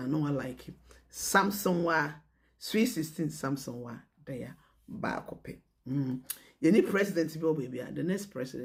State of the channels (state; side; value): identical; both; correlation 1.00